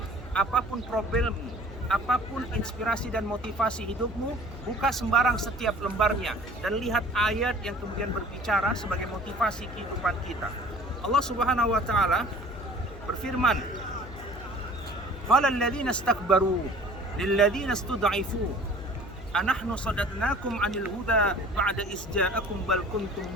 apapun problemmu, apapun inspirasi dan motivasi hidupmu, buka sembarang setiap lembarnya dan lihat ayat yang kemudian berbicara sebagai motivasi kehidupan kita. Allah Subhanahu wa ta'ala berfirman, qala alladziina istakbaru lilladziina istud'ifu anahnu sadadnakum 'anil huda ba'da iz ja'akum bal kuntum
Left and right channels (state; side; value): noise; left; hum, 14 dB below the sound